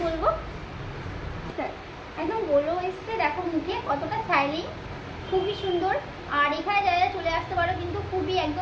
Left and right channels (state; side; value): identical; both; correlation 1.00